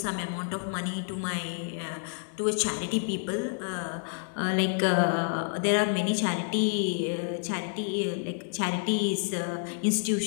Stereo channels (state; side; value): silent; right; digital silence